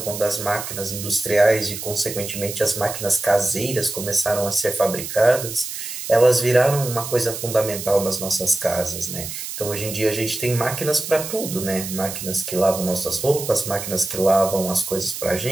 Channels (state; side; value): noise; right; hiss, 7 dB below the sound